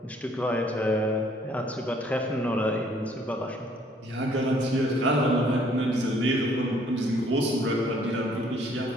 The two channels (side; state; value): both; normal; correlation 0.61